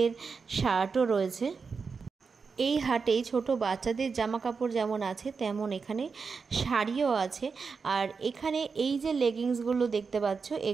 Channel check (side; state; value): left; quieter; 5.2 dB